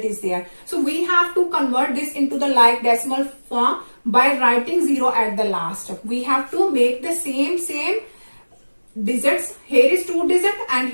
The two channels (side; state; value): both; inverted; correlation -1.00